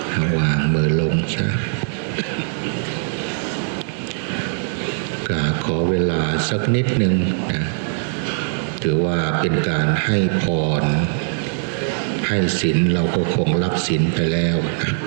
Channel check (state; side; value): silent; left; 60 dB below the other